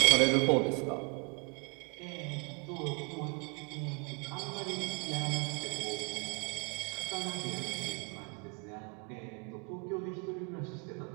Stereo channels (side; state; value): left; quieter; 35.5 dB